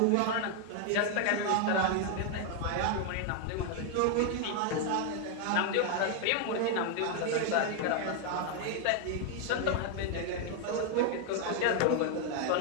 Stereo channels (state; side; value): different; both; correlation 0.00